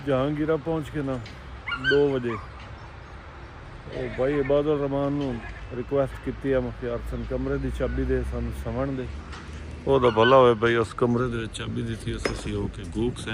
ਜਹਾਂਗੀਰਾ ਪਹੁੰਚ ਕੇ ਨਾ 2 ਵਜੇ ਉਹ ਭਾਈ ਇਬਾਦੁਰ ਰਹਿਮਾਨ ਨੂੰ ਰਿਕੁਐਸਟ ਕੀਤੀ ਆ ਮੁਖਤਿਆਰ ਸਿੰਘ ਕਮਰੇ ਦੀ ਚਾਬੀ ਦੇ ਸਾਨੂੰ ਸਵਣ ਦੇ ਉਹਦਾ ਭਲਾ ਹੋਵੇ ਬਈ ਉਸ ਕਮਰੇ ਦੇ ਵਿੱਚ ਚਾਬੀ ਦਿੱਤੀ ਅਸੀਂ ਹੋ ਕੇ ਗੂਕ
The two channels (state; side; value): identical; both; correlation 1.00